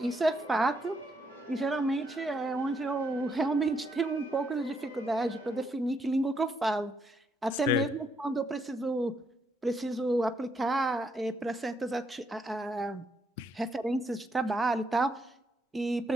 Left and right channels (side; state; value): both; normal; correlation 0.76